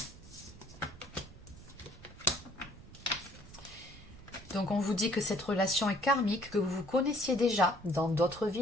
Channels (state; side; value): noise; right; rumble, 18 dB below the sound